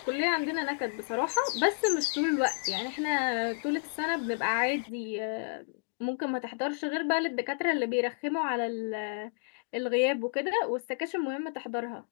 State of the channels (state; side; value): silent; right; digital silence